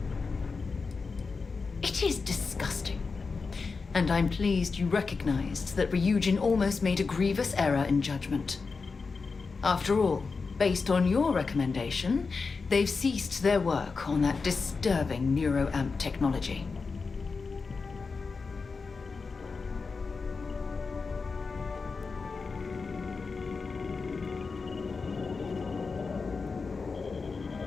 It is disgusting. And I'm pleased you recognized that Ryujin almost made a grievous error in judgment. After all, based on your recommendation, they've ceased their work on that disturbing neuroamp technology.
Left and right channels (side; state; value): right; quieter; 4.6 dB